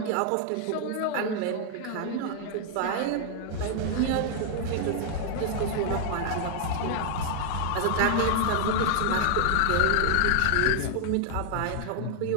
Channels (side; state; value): both; different; correlation 0.00